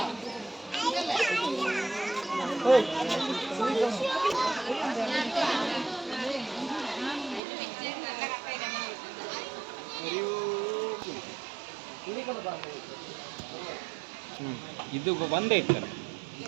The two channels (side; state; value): left; drops out; at 7.4 s